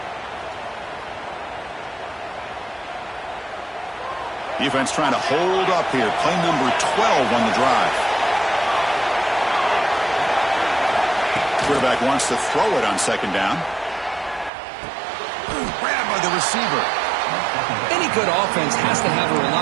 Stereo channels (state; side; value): drops out; left; at 14.5 s